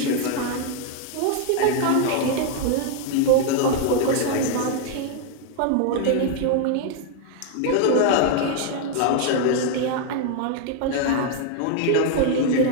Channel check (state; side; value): different; both; correlation 0.00